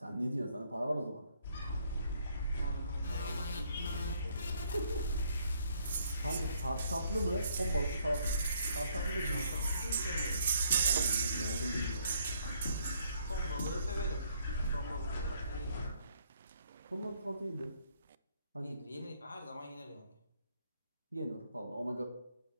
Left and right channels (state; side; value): inverted; both; correlation -0.67